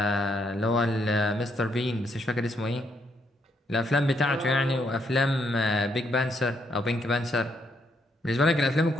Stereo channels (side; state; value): both; normal; correlation 0.75